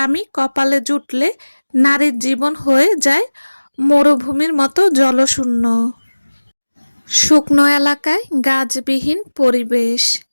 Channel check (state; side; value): inverted; both; correlation -1.00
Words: কপালে জুটলে নারীর জীবন হয়ে যায় মরুভূমির মতো জলশূন্য। শুকনো এলাকায় গাছবিহীন পরিবেশ।